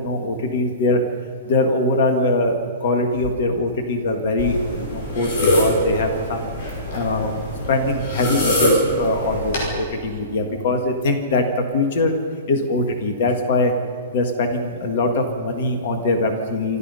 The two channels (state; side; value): inverted; both; correlation -0.35